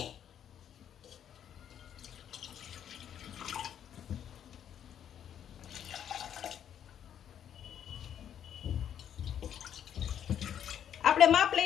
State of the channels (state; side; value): quieter; right; 9.5 dB